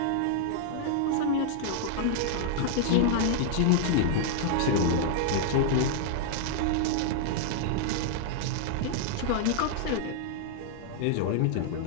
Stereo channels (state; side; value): different; both; correlation -0.01